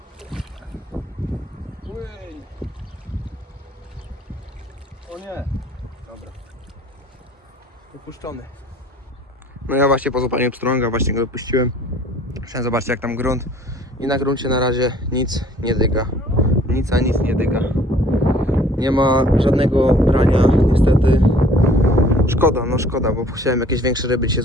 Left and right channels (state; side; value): normal; both; correlation 0.54